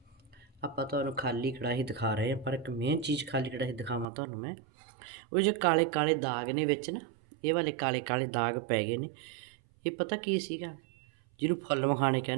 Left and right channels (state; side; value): drops out; left; at 4.0 s